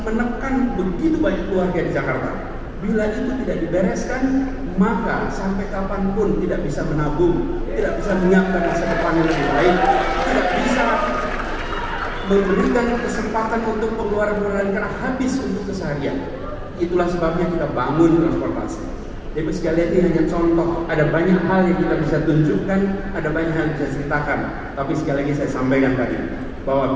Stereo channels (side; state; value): both; identical; correlation 1.00